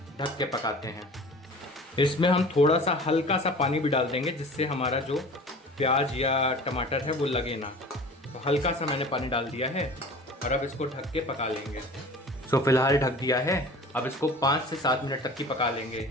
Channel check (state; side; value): normal; both; correlation 0.42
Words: ढक के पकाते हैं। इसमें हम थोड़ा सा हल्का सा पानी भी डाल देंगे जिससे हमारा जो प्याज या टमाटर है वो लगे ना। तो हल्का सा मैंने पानी डाल दिया है और अब इसको ढक के पका लेंगे। तो फिलहाल ढक दिया है, अब इसको 5 से 7 मिनट तक की पका लेंगे।